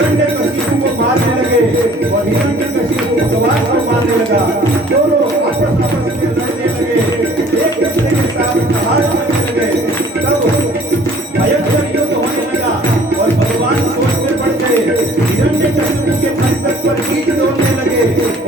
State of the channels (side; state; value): both; normal; correlation 0.53